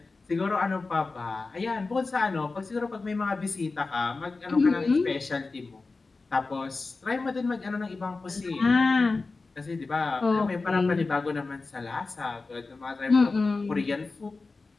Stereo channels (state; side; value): quieter; right; 3.8 dB